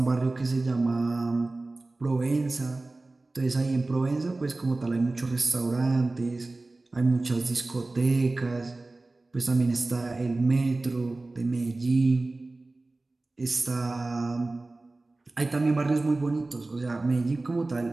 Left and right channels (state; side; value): quieter; left; 3.1 dB